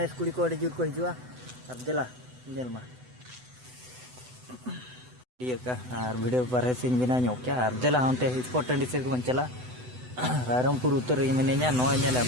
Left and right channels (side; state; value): left; late; 8.0 ms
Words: कुड़ी को जुर को हिजुआ और देला जेल मा ये का और वीडियो पर सिंग बिना ᱧᱚᱜ क्या और देला होंते स्पॉट टंडी से को चला रायरमपुर उत्तर मिने냐 नो ñेले